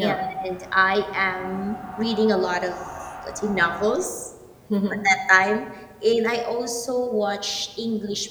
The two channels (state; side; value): identical; both; correlation 1.00